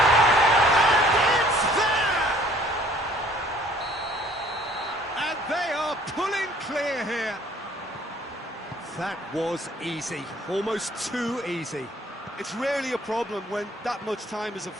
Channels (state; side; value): normal; both; correlation 0.56